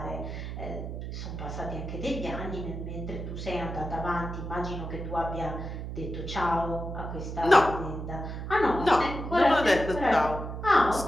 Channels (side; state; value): right; noise; hum, 6 dB below the sound